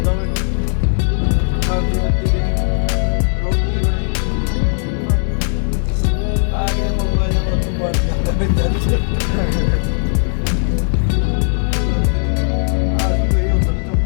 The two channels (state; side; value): silent; right; digital silence